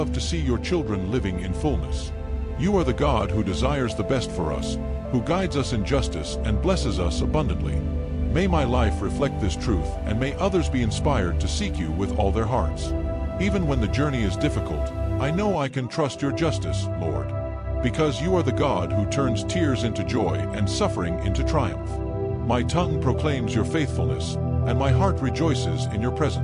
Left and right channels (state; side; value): identical; both; correlation 1.00